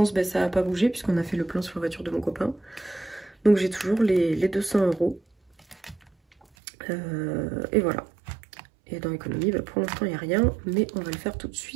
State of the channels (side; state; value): left; drops out; at 6.5 s